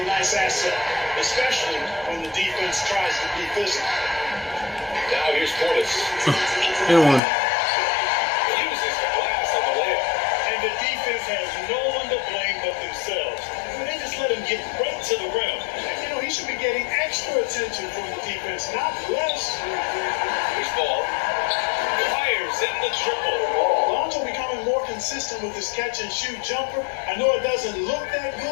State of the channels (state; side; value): drops out; right; at 7.2 s